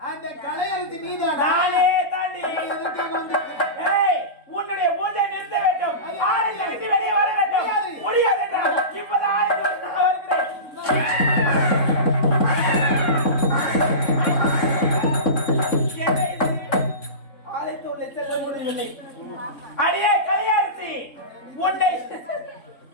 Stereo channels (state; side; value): late; right; 3.7 ms